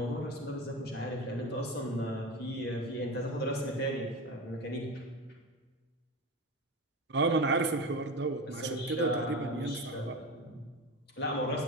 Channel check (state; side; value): normal; both; correlation 0.24